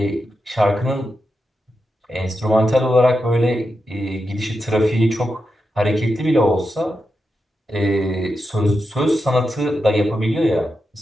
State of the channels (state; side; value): normal; both; correlation 0.88